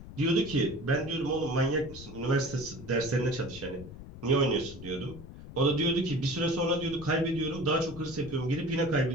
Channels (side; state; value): left; noise; rumble, 14 dB below the sound